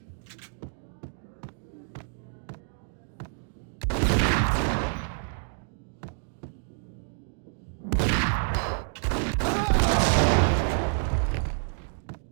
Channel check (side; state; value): left; silent; digital silence